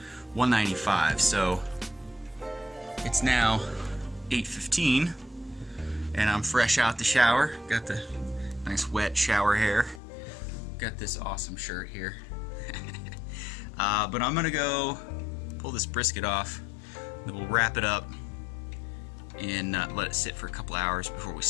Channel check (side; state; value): right; drops out; at 10.0 s